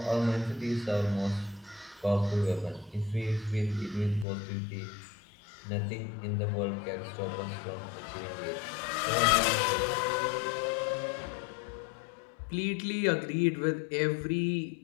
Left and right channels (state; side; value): drops out; right; at 4.2 s